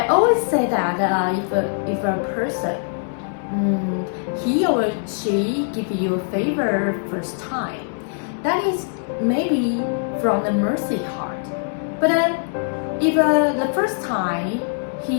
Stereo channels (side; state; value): right; silent; digital silence